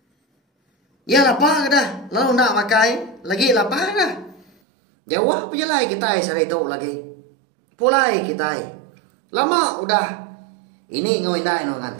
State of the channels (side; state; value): left; drops out; at 4.5 s